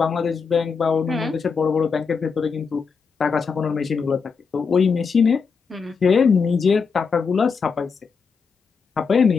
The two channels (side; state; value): right; quieter; 5.5 dB